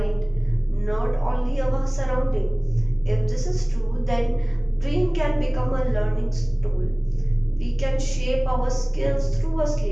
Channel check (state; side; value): noise; left; rumble, 22 dB below the sound